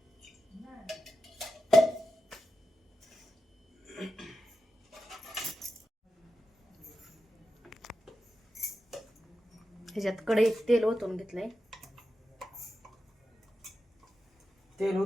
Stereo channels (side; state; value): both; normal; correlation 0.90